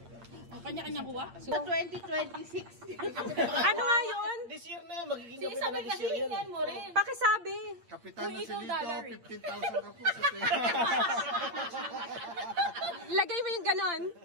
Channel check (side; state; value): left; late; 8.7 ms